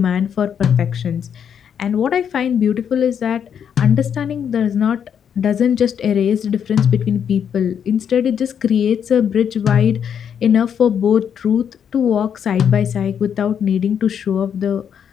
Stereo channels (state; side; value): quieter; right; 8.1 dB